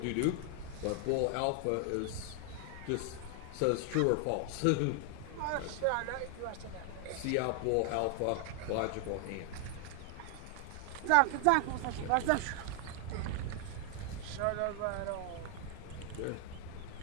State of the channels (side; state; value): both; different; correlation 0.00